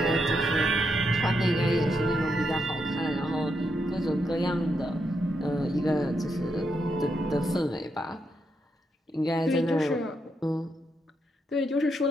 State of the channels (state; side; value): normal; both; correlation 0.81